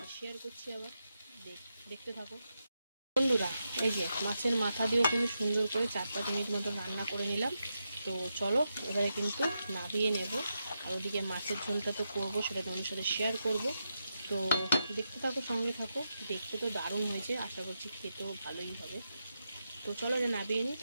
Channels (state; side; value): inverted; both; correlation -0.86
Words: শেয়ার করছি। আবার দেখতে থাকো বন্ধুরা। এই যে মাছের মাথা দিয়েও কিন্তু সুন্দর করে 4-5 মিনিট মতো রান্না করে নিলাম। তো চলো এবারে কিন্তু নামিয়ে নেব। আর ওদিকে মাছের ঝোলটা তো করবো, সেটা তোমাদের সাথে শেয়ার করব। তো দেখতে থাকো, সঙ্গে থাকো। দেখতে তো দারুণ হয়েছে, আশা করছি খেতেও ভালোই হবে। তো চলো যে নামিয়ে নিই,